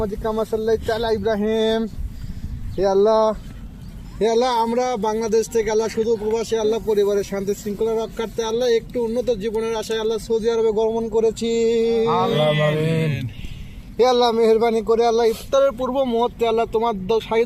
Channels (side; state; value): both; identical; correlation 1.00